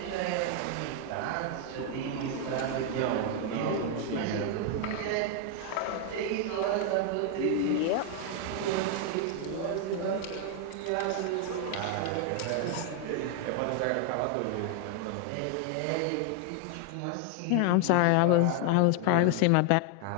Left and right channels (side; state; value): both; different; correlation 0.00